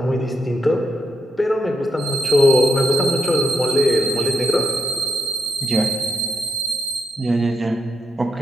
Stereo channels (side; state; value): both; normal; correlation 0.81